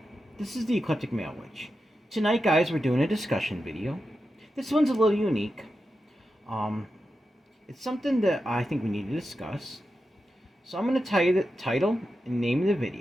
This is the Eclectic Male Witch. Tonight, guys, we're doing a discussion video. This one's a little unique. It's something that I think we need to discuss. So I'm going to tell you the title and name of the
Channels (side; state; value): both; normal; correlation 0.90